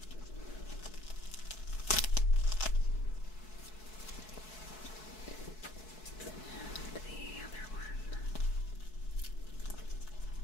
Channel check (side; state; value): right; late; 4.6 ms